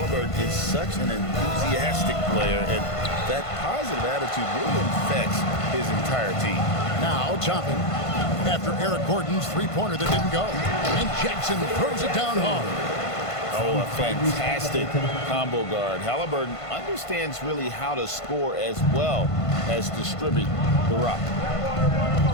is such an enthusiastic player, and that positive attitude really infects his entire team. Now, chopping after Eric Gordon's three-pointer that didn't go. And Jackson throws it down hard. Oh, a fantastic combo guard. Halliburton understands really how to score as well as distribute the rock.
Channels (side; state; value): right; late; 1.5 ms